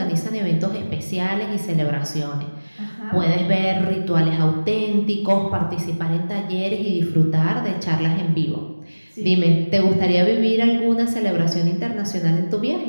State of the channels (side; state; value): both; inverted; correlation -1.00